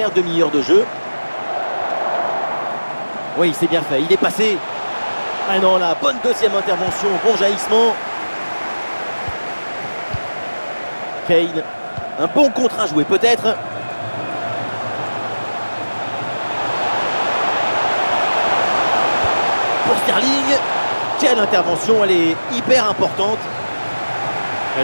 demi-heure de jeu. Oui, c'est bien fait, il est passé. Ah non, la bonne deuxième intervention, bon jaillissement. Kane, un bon contre à jouer peut-être. Pour Sterling, quelle intervention, elle est hyper importante. Et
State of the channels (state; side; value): inverted; both; correlation -1.00